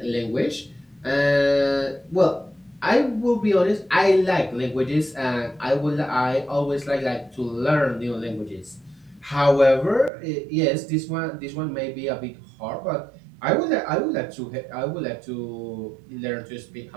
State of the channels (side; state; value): left; drops out; at 10.1 s